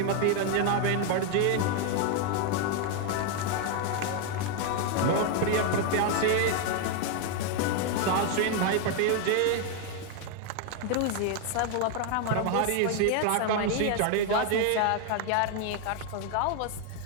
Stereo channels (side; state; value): both; different; correlation 0.01